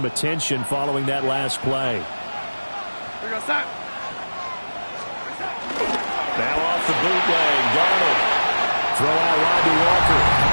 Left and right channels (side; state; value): both; inverted; correlation -1.00